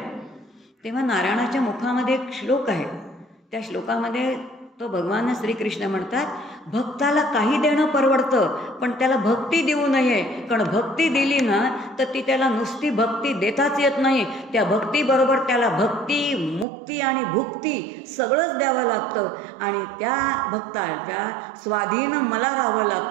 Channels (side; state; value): left; drops out; at 16.7 s